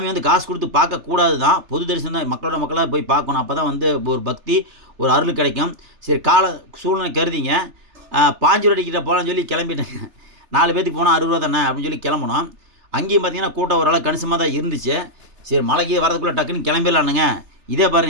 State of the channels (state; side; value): late; left; 3.4 ms